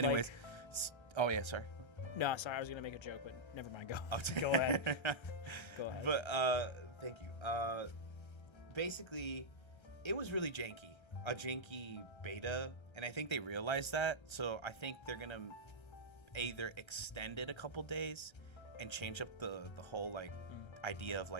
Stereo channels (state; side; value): late; right; 1.3 ms